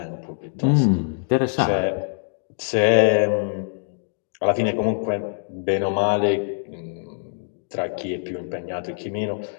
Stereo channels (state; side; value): silent; right; digital silence